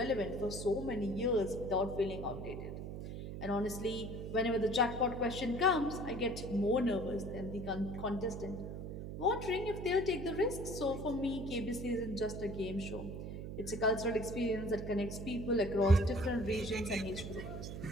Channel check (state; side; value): noise; right; hum, 7 dB below the sound